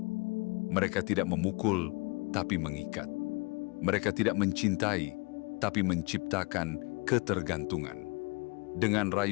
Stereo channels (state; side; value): quieter; right; 29.4 dB